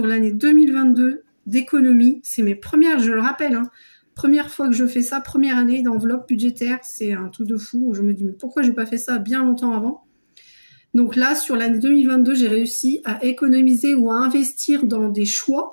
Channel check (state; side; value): inverted; both; correlation -1.00